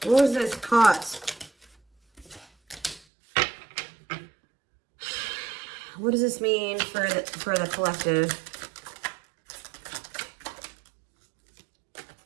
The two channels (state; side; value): drops out; left; at 3.0 s